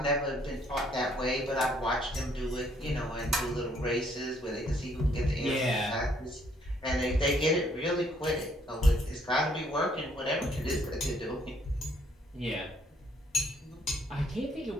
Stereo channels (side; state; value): both; normal; correlation 0.67